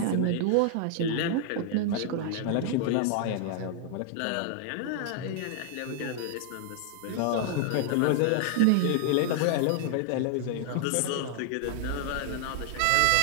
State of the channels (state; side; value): different; both; correlation 0.00